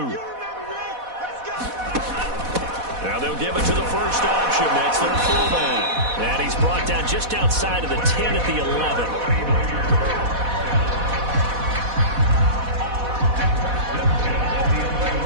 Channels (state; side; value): late; left; 4.1 ms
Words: Now they'll give it to the first option. That's their fullback. And he's brought down just outside of the 10 at the 11.